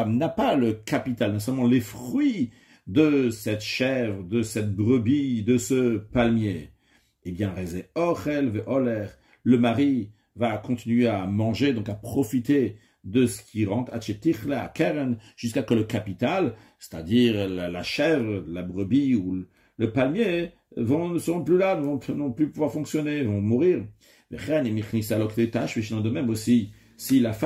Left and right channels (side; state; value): both; identical; correlation 1.00